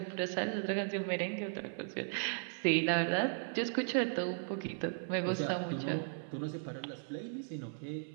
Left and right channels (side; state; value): left; silent; 53 dB below the other